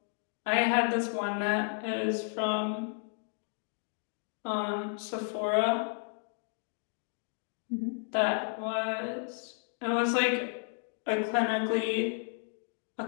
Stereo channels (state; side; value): silent; right; 56 dB below the other